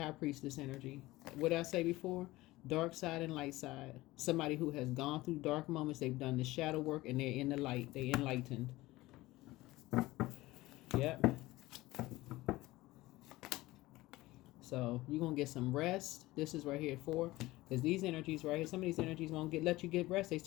priestess energy. What did I say before? Dark side and light side. Somebody who has gone through dark moments. They've done the shadow work, and they're in the light. They're enlightened. Yep. So you're going to get some rest. This is right here for, because these energies right here, some of these energies won't let you get rest. They're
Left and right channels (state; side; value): quieter; right; 18.7 dB